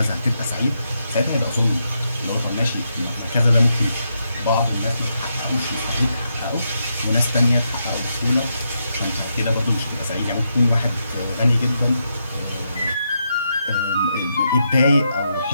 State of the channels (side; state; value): both; inverted; correlation -0.82